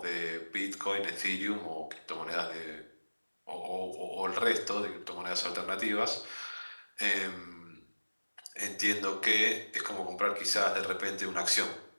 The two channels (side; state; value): both; inverted; correlation -1.00